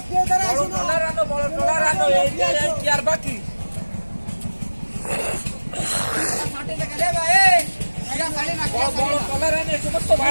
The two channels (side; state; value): both; inverted; correlation -1.00